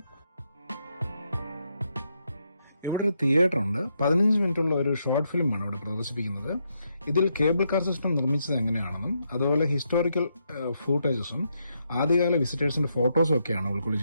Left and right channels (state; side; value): inverted; both; correlation -0.80